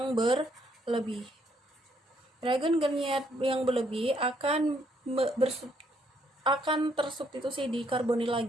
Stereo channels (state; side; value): normal; both; correlation 0.70